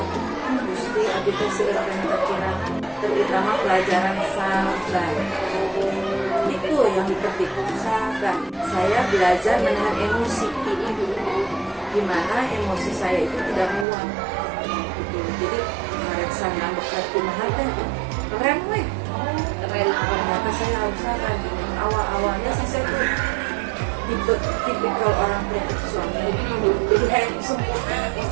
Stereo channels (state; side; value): drops out; left; at 13.9 s